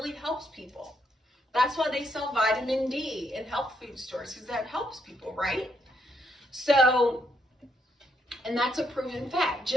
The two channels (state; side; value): normal; both; correlation 0.76